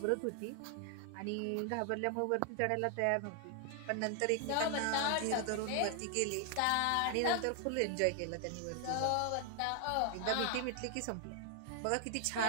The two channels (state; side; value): different; both; correlation 0.00